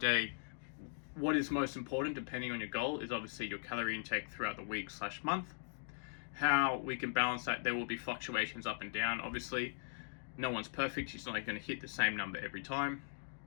day, what is most important, depending on your goal, is obviously your calorie intake throughout the week / month. How we can balance that, there will be fluctuations up and down. Obviously, no one's perfect. It's not like going to hit the same number every time.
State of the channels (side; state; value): right; silent; digital silence